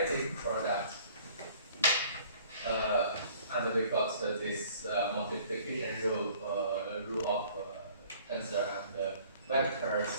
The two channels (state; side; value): inverted; both; correlation -0.53